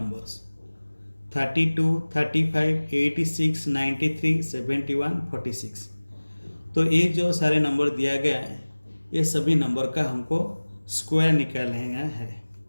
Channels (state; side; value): inverted; both; correlation -1.00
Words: 32, 35, 86, 93, 71, 46। तो ये जो सारे नंबर दिया गया है ये सभी नंबर का हमको स्क्वायर निकालना है,